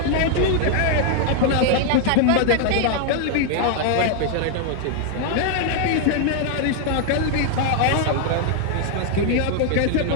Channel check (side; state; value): both; different; correlation 0.00